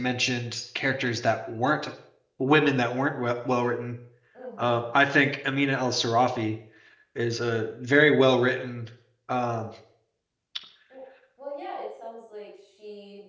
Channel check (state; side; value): identical; both; correlation 1.00